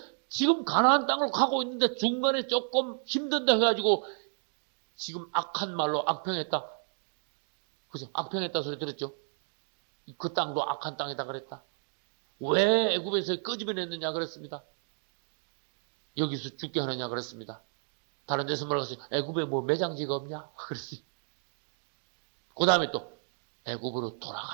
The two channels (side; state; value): left; silent; 57 dB below the other